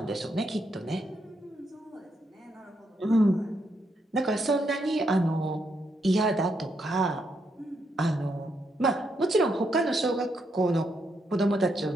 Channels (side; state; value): both; normal; correlation 0.79